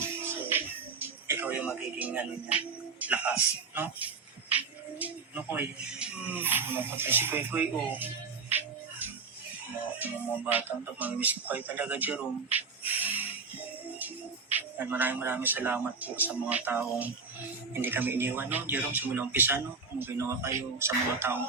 So, ikaw yung magiging lakas, no? No, Koy? Napatay si Koy, oh. Mga batang ito, mamimiss ko kayo talaga, Jerome. At maraming salamat po sa mga taong hindi kami iniwan, no? Jerome, simula umpisa, no? Kung ginawa kayo sa mga taong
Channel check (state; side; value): quieter; left; 4.8 dB